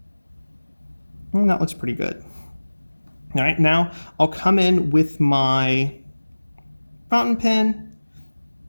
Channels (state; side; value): inverted; both; correlation -1.00